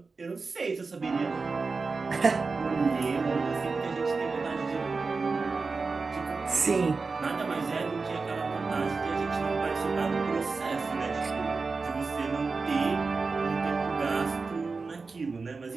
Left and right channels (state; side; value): quieter; left; 4.3 dB